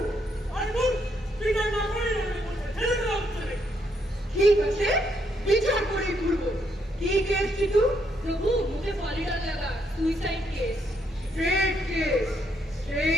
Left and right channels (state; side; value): normal; both; correlation 0.75